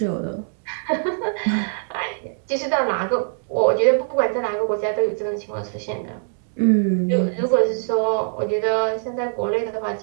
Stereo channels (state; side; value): silent; left; digital silence